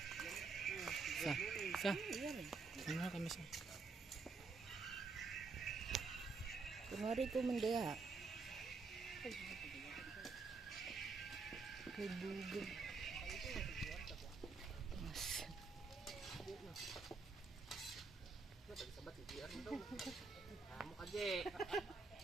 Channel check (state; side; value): quieter; left; 4.3 dB